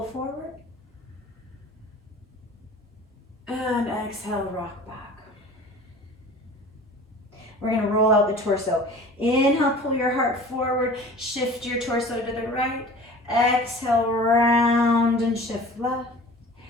forward. And exhale, rock back. We're going to roll out the torso. Inhale, pull your heart forward, shift your torso to the right. Exhale, round and shift left.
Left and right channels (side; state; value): both; normal; correlation 0.43